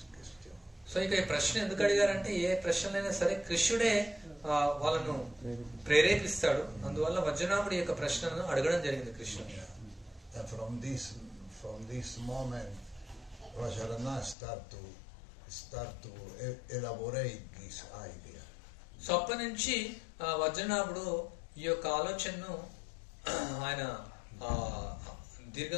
question. So ఇక ఈ ప్రశ్న ఎందుకు అడిగారంటే ఏ ప్రశ్నలైనా సరే కృష్ణుడే వాళ్ళను ప్రేరేపిస్తాడు. అందువల్ల వజ్రనాభుడి యొక్క ప్రశ్నను అడగడం జరిగింది కృష్ణుడు. And from this moment Vajranav start to elaborate this idea. So అప్పటి నుంచి వజ్రనాభుడు ఈ యొక్క ఆలోచనను ఆయన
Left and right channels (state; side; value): drops out; right; at 14.4 s